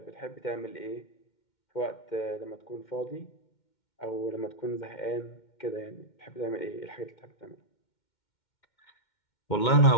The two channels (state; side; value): late; right; 2.1 ms